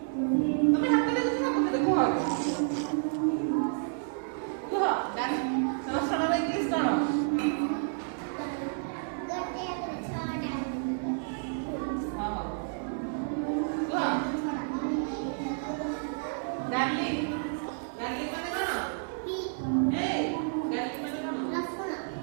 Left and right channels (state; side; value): silent; left; 58 dB below the other